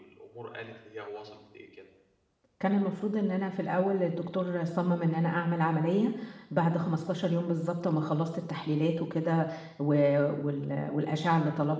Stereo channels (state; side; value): identical; both; correlation 1.00